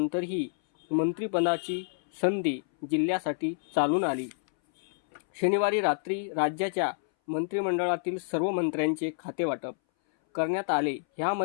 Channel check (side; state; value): right; silent; 59 dB below the other